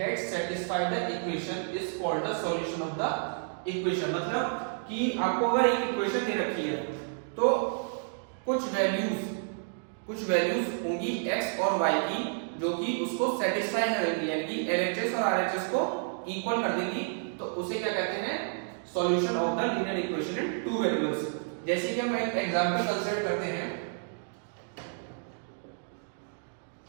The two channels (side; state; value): left; silent; digital silence